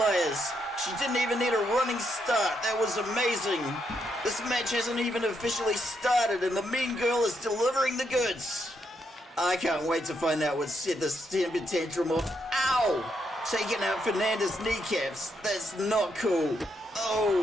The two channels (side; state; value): both; normal; correlation 0.79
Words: She didn't even need a running start. That was amazing. This match hasn't even officially started, and the mean girl is delivering the goods. I can't wait to find out what set this temper tantrum off. Ow! Taking out Fernanda's kneecaps. That's not cool.